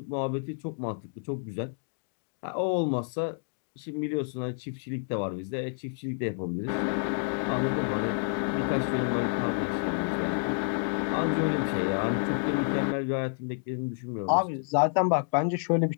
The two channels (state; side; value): silent; right; digital silence